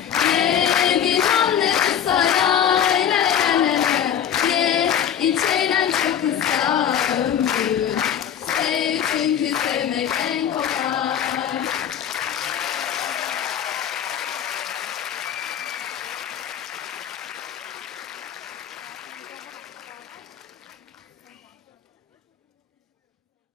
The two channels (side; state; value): right; quieter; 9.2 dB